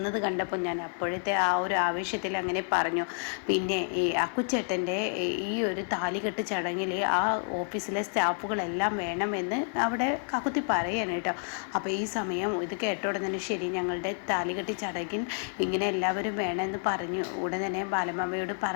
കണ്ടപ്പോൾ ഞാൻ അപ്പോഴത്തെ ആ ഒരു ആവേശത്തിൽ അങ്ങനെ പറഞ്ഞു. പിന്നെ ഈ അക്കുച്ചേട്ടൻ്റെ ഈ ഒരു താലികെട്ട് ചടങ്ങിൽ ആ ഓഫീസിലെ സ്റ്റാഫുകളെല്ലാം വേണമെന്ന് അവിടെ കാക്കുത്തി പറയാണ് കേട്ടോ. അപ്പോൾ ഈ സമയം ഇത് കേട്ട ഉടനെ തന്നെ ശരി, ഞങ്ങളുടെ താലികെട്ട് ചടങ്ങിൽ ഇങ്ങനെ എല്ലാവരും വേണമെന്ന് പറഞ്ഞു. ഉടൻ തന്നെ ബാലമാമയോട്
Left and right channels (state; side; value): silent; right; 58 dB below the other